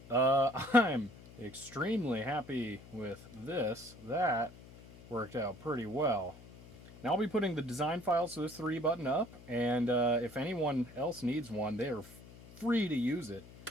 I'm extremely happy with this. That worked out pretty well. Now I'll be putting the design files to this 3 button up, and if anyone else needs one, they are free to use it,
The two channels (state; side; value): noise; left; hum, 19 dB below the sound